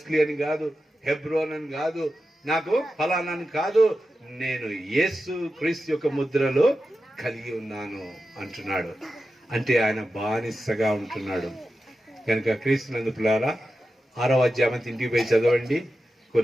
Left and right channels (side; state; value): both; normal; correlation 0.91